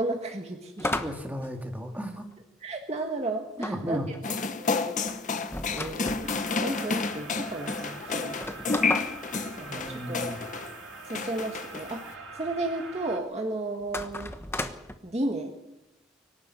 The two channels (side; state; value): both; normal; correlation 0.51